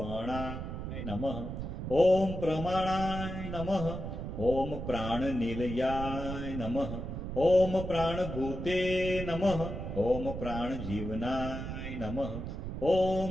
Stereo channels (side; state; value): right; noise; rumble, 6 dB below the sound